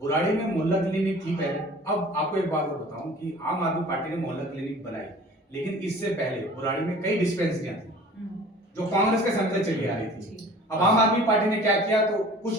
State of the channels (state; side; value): normal; both; correlation 0.46